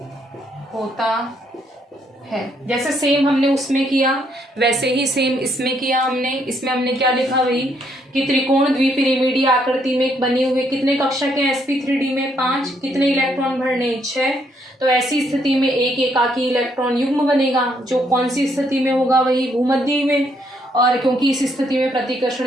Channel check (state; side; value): normal; both; correlation 0.72